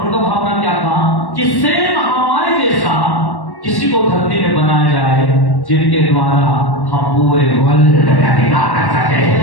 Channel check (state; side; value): late; right; 1.1 ms